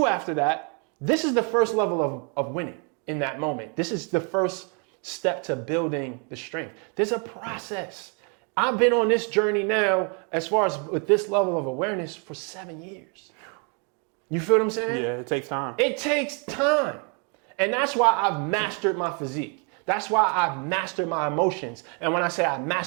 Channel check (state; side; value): quieter; left; 36.9 dB